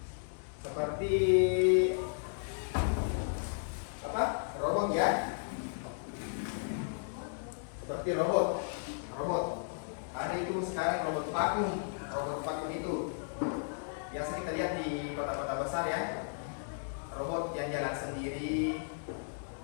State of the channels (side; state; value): right; silent; 55 dB below the other